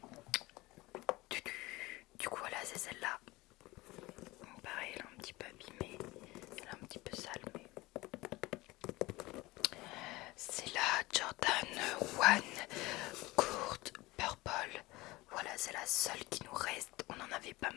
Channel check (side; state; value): right; quieter; 20.6 dB